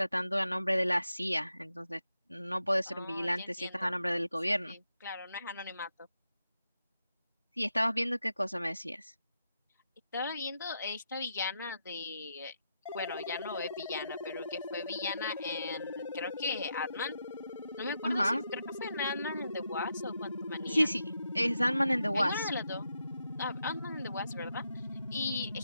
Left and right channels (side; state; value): both; inverted; correlation -0.83